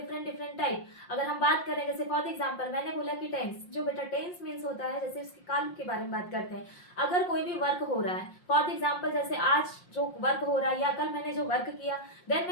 डिफरेंट टाइप। अगर हम बात करें, जैसे फॉर एग्जांपल मैंने बोला कि टेंस जो बेटा टेंस मीन्स होता है, जैसे उसके काल के बारे में बात करते हैं। अगर कोई भी वर्क हो रहा है, फॉर एग्जाम्पल जैसे आज जो वर्क हो रहा है या कल मैंने जो वर्क किया, देन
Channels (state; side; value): late; right; 5.6 ms